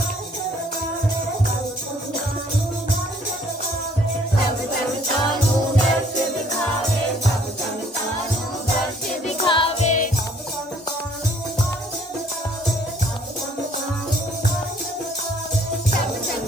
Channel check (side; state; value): both; normal; correlation 0.61